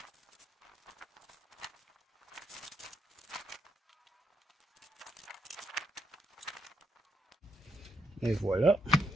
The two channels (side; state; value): both; normal; correlation 0.77